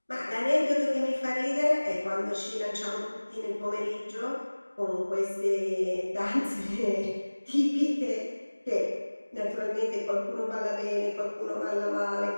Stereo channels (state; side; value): inverted; both; correlation -1.00